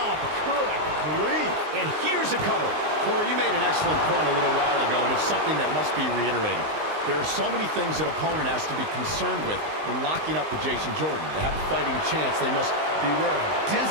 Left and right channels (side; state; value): left; late; 19 ms